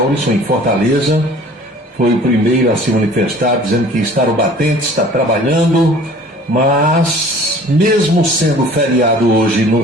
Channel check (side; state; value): both; normal; correlation 0.48